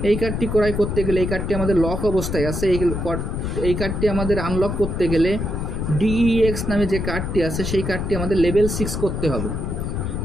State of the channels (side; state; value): left; noise; rumble, 3 dB below the sound